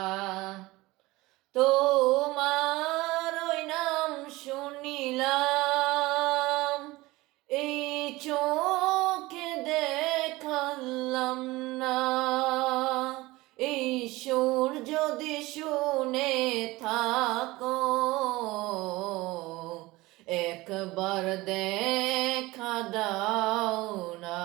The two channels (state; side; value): quieter; left; 20.2 dB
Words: তোমার ওই নাম শুনিলাম এই চোখে দেখালাম না এই সুর যদি শুনে থাকো একবার দেখা দাও না